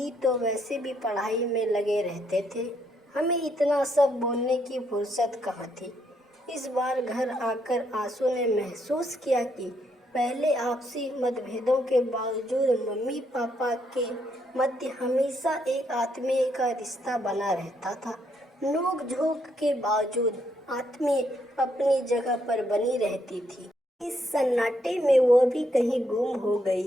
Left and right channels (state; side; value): normal; both; correlation 0.74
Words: तो वैसे भी पढ़ाई में लगे रहते थे, हमें इतना सब बोलने की फुर्सत कहाँ थी। इस बार घर आकर आंसू ने महसूस किया कि पहले आपसी मतभेदों के बावजूद मम्मी पापा के मध्य हमेशा एक आत्मीय का रिश्ता बना रहता था। नोक झोंक के बावजूद आत्मीय अपनी जगह पर बनी रहती थी। इस सन्नाटे में वो भी कहीं गुम हो